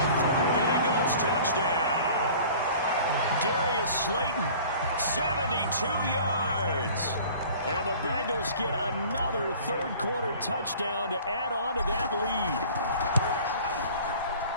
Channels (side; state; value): both; inverted; correlation -0.46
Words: for a Bengals touchdown. Darius Slayton, 72 yards. And the Bengals get another 3rd quarter touchdown to add on to that lead.